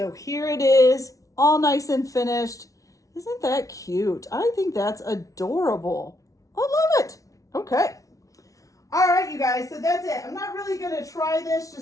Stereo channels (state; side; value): late; right; 0.17 ms